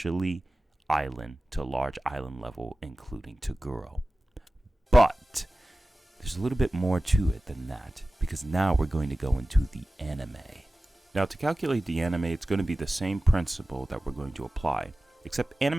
island to large island level, including Toguro. But there's a little bit more to it than that, because now we're going to go into the anime. Now, to calculate the anime, it's going to be the same principle that we're going to apply, except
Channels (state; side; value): normal; both; correlation 0.96